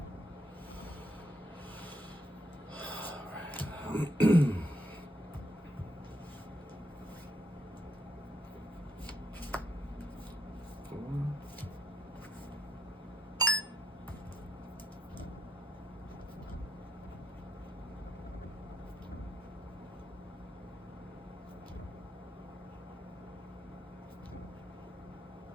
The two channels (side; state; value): both; normal; correlation 0.76